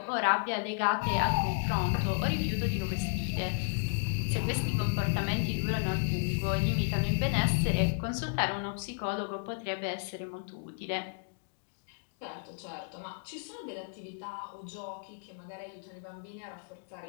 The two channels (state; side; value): silent; right; digital silence